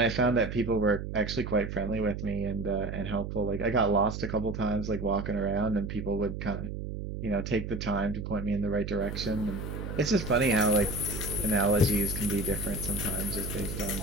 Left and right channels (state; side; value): noise; right; hum, 6 dB below the sound